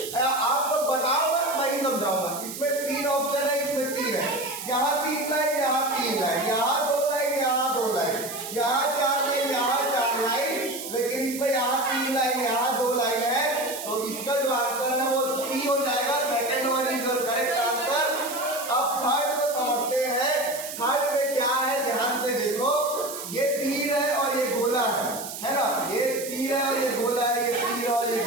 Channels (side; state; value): right; noise; hiss, 9 dB below the sound